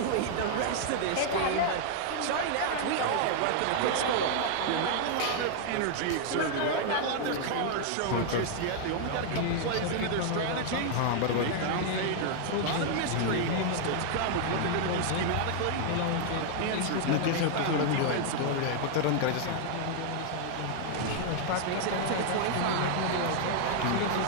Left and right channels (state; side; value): different; both; correlation 0.00